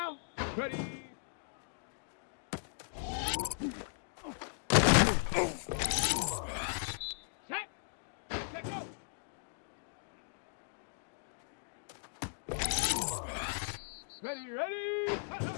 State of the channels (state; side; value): silent; right; digital silence